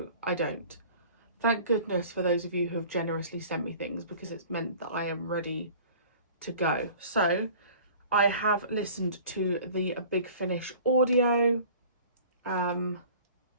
I don't. Thank goodness for those of you who have generously sent me things because it's meant that I am ready to go. So, I have listened to the Big Finish audio.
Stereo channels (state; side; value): inverted; both; correlation -0.46